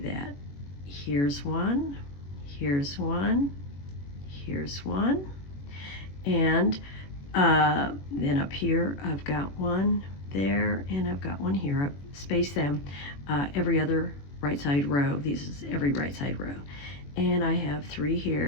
here's one, here's one, here's one, and then up here I've got one there, and I've got one here. I've spaced them every other right side row. This is every right side row. And I have 3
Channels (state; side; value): late; right; 21 ms